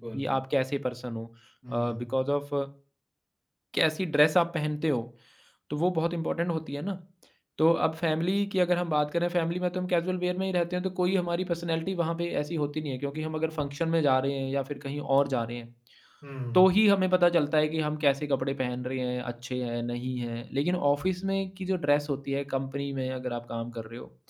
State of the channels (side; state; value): both; identical; correlation 1.00